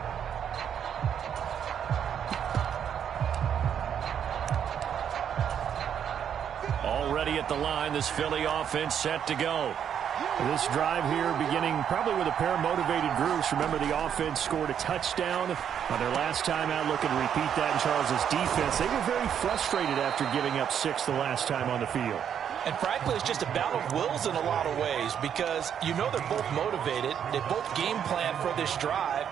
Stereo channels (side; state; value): left; quieter; 8.6 dB